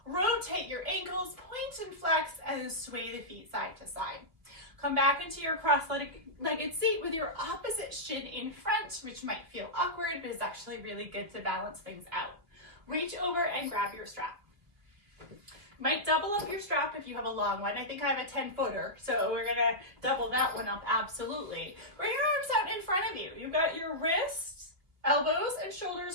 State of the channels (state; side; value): late; left; 2.7 ms